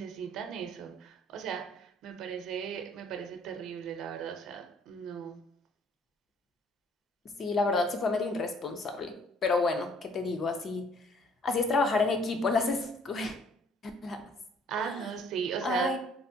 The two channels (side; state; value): both; normal; correlation 0.59